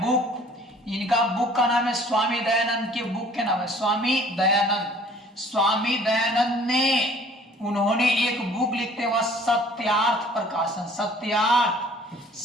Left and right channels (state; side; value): normal; both; correlation 0.52